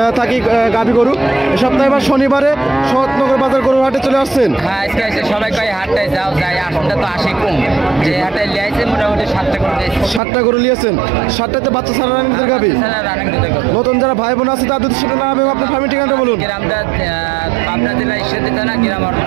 থাকি গাভী গরু। এই সপ্তাহে এবার শনিবারে শরৎনগর বাজার গরু হাটে চলে আসছেন। হ্যাঁ আজকে এসে সবাই কয় হাটটায় যাও যাই আসনটা তো আসে কম। যে হাটে লিয়েছে মোটামুটি 7টা করে দিয়েছে। 7টা গরু নিয়েছেন। 7টাতে বাচ্চা ছাড়া রানিং দুধের গাভী। রানিং দুধের গরু। নতুন যারা ভাই বোন আছে তাদের সাথে নাম এবং আপনার ফার্মের ঠিকানাটা বলুন। গ্রামটা পাবনা জেলা ঈশ্বরদী থানা গ্রাম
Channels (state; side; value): drops out; left; at 10.2 s